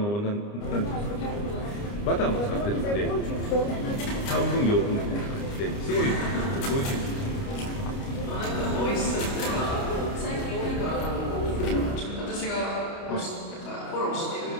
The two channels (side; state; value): right; late; 29 ms